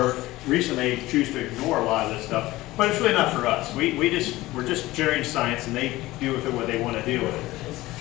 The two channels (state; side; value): quieter; right; 18.1 dB